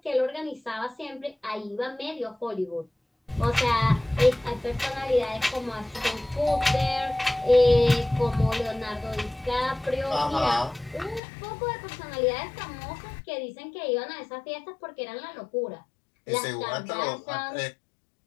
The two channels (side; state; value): right; drops out; at 11.2 s